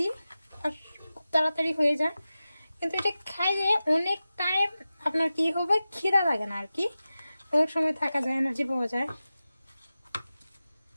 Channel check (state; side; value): inverted; both; correlation -0.95